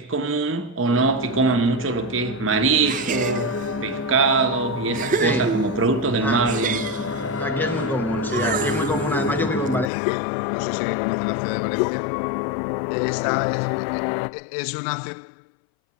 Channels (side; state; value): right; drops out; at 9.9 s